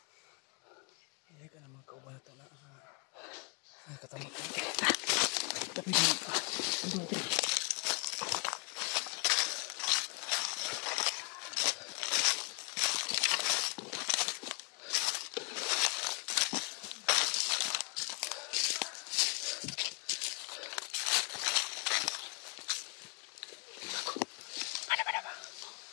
Hindi ka na mga kaubata na katamot. Tapi di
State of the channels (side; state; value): right; quieter; 34.4 dB